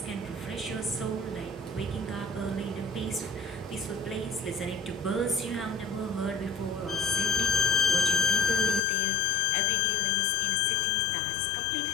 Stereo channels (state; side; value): drops out; right; at 8.8 s